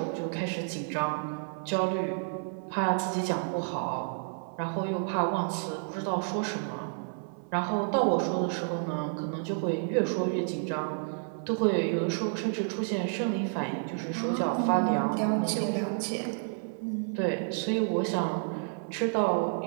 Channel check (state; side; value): silent; left; 58 dB below the other